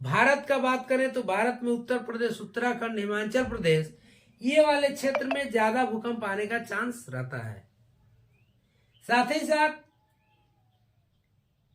भारत का बात करें तो भारत में उत्तर प्रदेश, उत्तराखंड, हिमाचल प्रदेश, ये वाले क्षेत्र में ज्यादा भूकंप आने का चांस रहता है। साथ ही साथ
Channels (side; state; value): both; identical; correlation 1.00